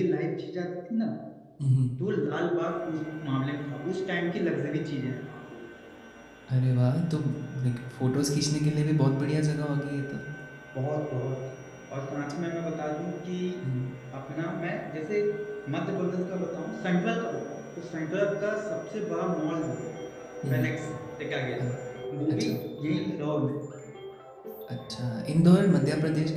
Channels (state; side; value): identical; both; correlation 1.00